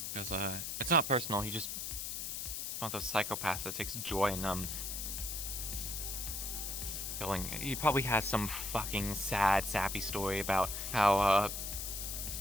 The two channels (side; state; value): left; noise; hiss, 4 dB below the sound